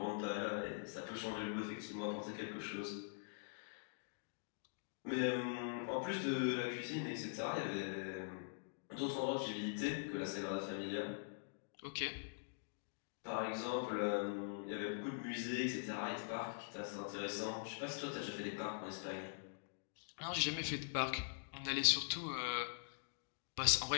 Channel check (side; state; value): right; silent; digital silence